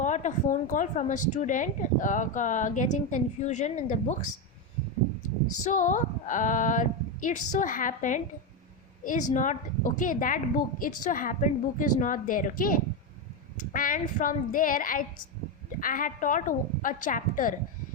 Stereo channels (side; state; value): both; normal; correlation 0.09